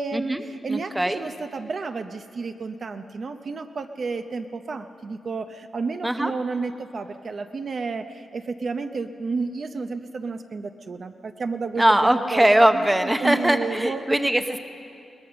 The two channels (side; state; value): both; normal; correlation 0.97